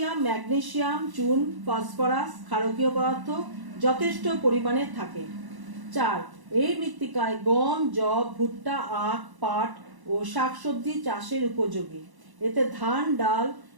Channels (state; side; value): late; left; 1.0 ms